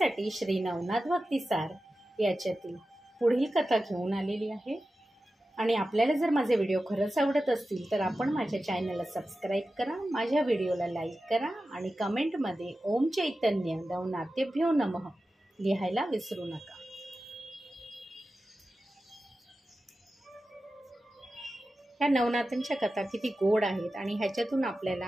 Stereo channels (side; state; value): both; normal; correlation 0.93